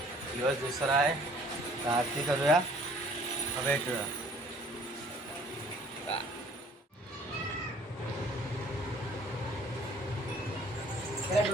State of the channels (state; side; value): normal; both; correlation 0.55